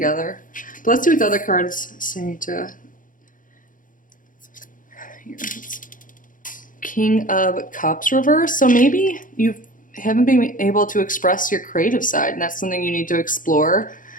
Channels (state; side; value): late; right; 0.39 ms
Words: But let's see what the other cards say to... Here. King of Cups reverse. So maybe you haven't been able to express your creative side, and that's something you need to explore.